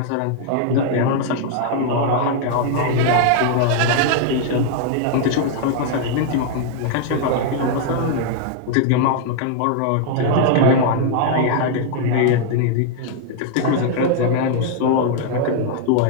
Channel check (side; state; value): both; different; correlation 0.00